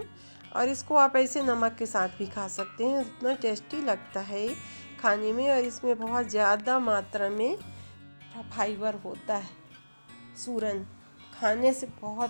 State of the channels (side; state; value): both; inverted; correlation -1.00